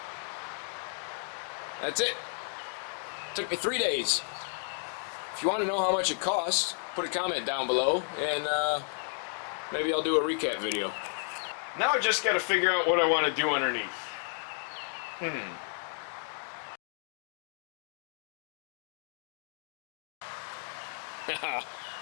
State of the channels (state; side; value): silent; right; 56 dB below the other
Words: That's it. Took me 3 days. If you want to know how much it costs, put a comment down below and maybe I'll do a recap video. Now I just got to figure out what I want to do underneath.